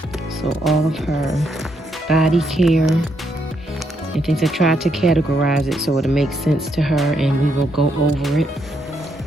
So all of her body care and things. I tried to categorize it so it'll make sense to her, and we will go over it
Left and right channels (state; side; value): normal; both; correlation 0.77